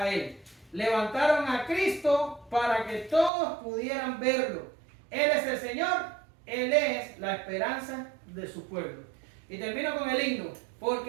Él. Levantaron a Cristo para que todos pudieran verlo. Él es el Señor, Él es la esperanza de su pueblo. Y termino con el himno.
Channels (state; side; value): drops out; left; at 3.3 s